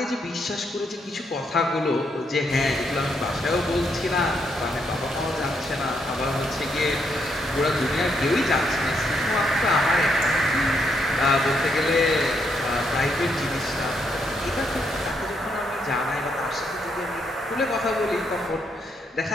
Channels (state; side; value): normal; both; correlation 0.77